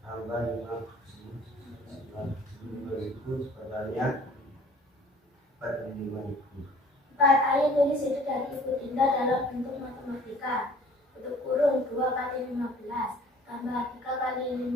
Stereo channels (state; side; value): normal; both; correlation 0.52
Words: tambah 5.000 totalnya 45.000. 4. Ayo tulis ide dari Ibu Dinda dalam bentuk matematika. Untuk kurung 2 kali 15 tambah 3 kali 5.000